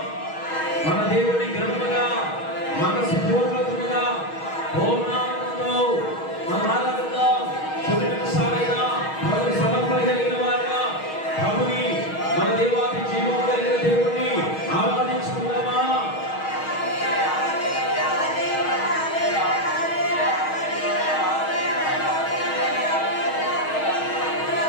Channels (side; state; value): right; late; 6.3 ms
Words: మన దేవుని గ్రంథముగా మనస్పూర్వకముగా పూర్ణాత్మతో మనం ఆరాధిద్దాం. కొన్ని నిమిషాలైనా ప్రభు సమర్పణగలిగిన వారుగా ప్రభుని మన దేవాది జీవం కలిగిన దేవుణ్ణి ఆరాధించుకుందామా?